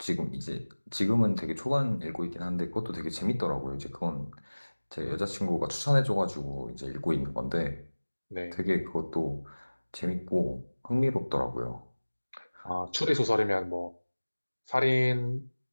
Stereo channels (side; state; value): both; inverted; correlation -1.00